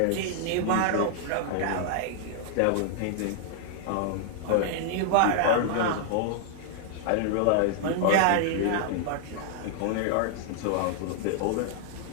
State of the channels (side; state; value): both; different; correlation -0.01